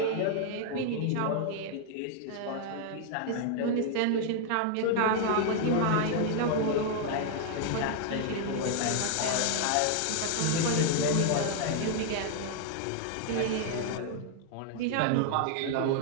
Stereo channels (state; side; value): different; both; correlation 0.00